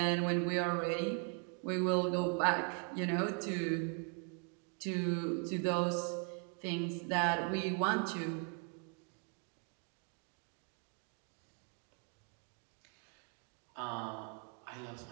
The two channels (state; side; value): quieter; left; 37.2 dB